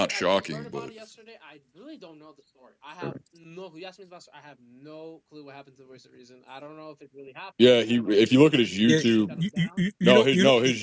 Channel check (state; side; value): identical; both; correlation 1.00